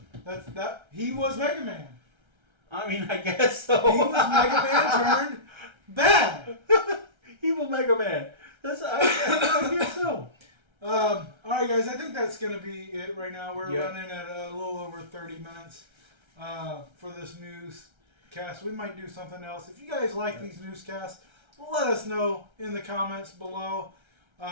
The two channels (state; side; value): late; left; 1.3 ms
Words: that he was Mega Man. I mean, I guess so. He was Mega Man turned bad. Evil Mega Man. I guess so. All right, guys. I think that's gonna be it right now. We're Yep. running at a little over 30 minutes for this newscast. We might do something else. If you guys like these newscasts, let us know in the comments below.